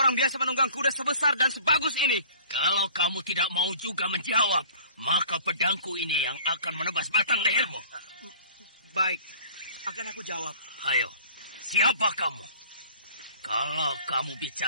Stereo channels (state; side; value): inverted; both; correlation -0.49